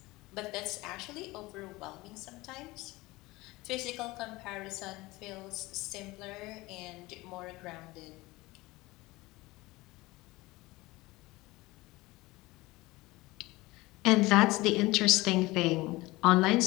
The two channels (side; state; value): right; quieter; 20.8 dB